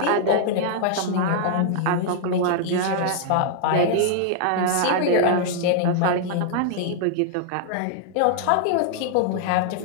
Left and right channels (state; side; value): different; both; correlation -0.01